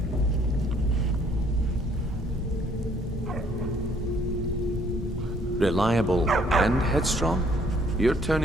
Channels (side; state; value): both; normal; correlation 0.63